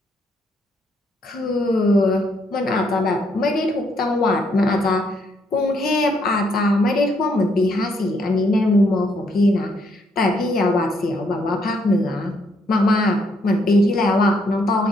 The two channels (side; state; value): both; normal; correlation 0.73